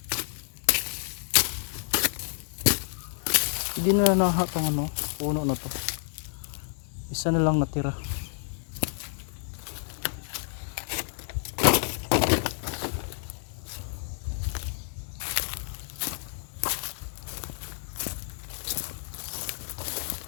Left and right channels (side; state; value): right; silent; digital silence